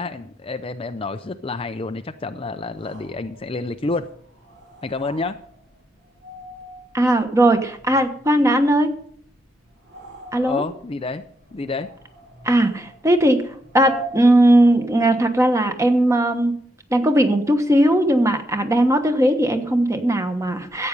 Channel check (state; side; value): normal; both; correlation 0.80